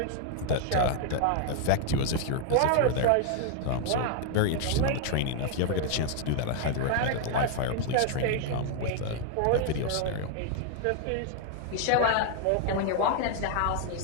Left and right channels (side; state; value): both; different; correlation 0.00